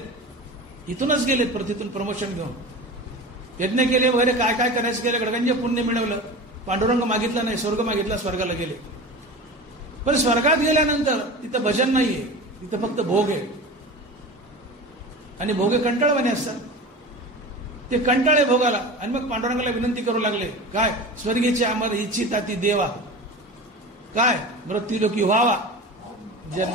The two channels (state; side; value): normal; both; correlation 0.32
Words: इथूनच गेलेत पृथ्वीतून प्रमोशन घेऊन, यज्ञ केले वगैरे काय काय करायचं केलं, गडगंज पुण्य मिळवलं, पांडुरंग मागितला नाही, स्वर्ग मागितला, स्वर्गाला गेले. पण स्वर्गात गेल्यानंतर तिथं भजन नाहीये, तिथं फक्त भोग आहे. आणि भोगे कंटाळवाणे असतात, ते कंटाळे भोगाला. आणि मग पांडुरंगाला विनंती करू लागले, काय स्वर्गीचे आम्हाला इच्छिता ती देवा, काय मृत्यूलोकी व्हावा